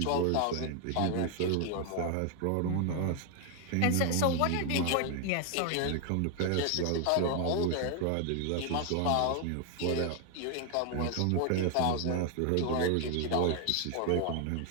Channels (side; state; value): both; different; correlation 0.01